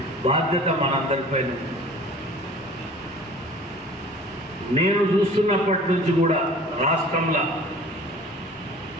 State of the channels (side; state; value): both; normal; correlation 0.45